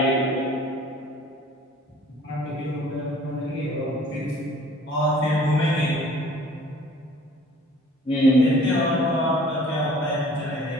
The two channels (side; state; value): both; normal; correlation 0.51